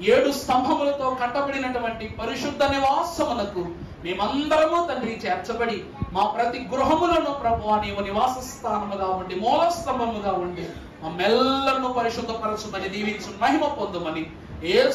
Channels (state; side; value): identical; both; correlation 1.00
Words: 7 స్తంభములతో కట్టబడినటువంటి పరిశుద్ధ నివాసమునకు మేమందరము తండ్రి చేర్చబడి మా ప్రతి గృహములను ప్రభువా నీవు నివాస స్థానముగా ఉండి, మూల స్తంభముగా ఉండి మమ్మెల్లరూ పరిశుద్ధపరచుమని దీవించు మహిమ పొందుమని